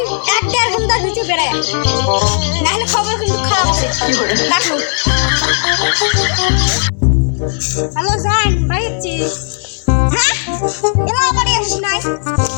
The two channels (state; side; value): silent; right; 62 dB below the other